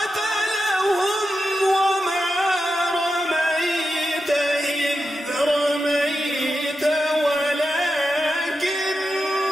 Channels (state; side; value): normal; both; correlation 0.89